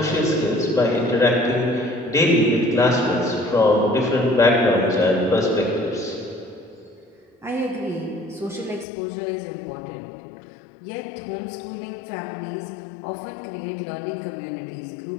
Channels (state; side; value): drops out; right; at 8.8 s